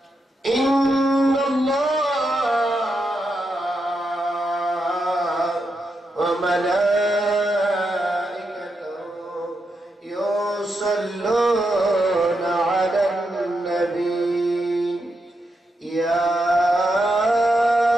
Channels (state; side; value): normal; both; correlation 0.84